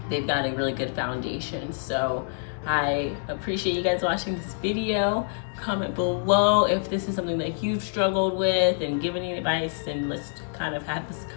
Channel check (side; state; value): right; silent; digital silence